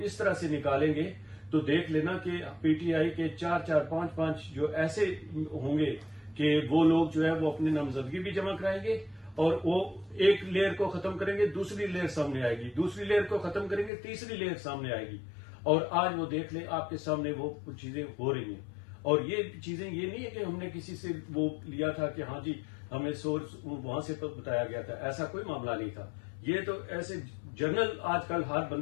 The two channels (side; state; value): right; drops out; at 13.9 s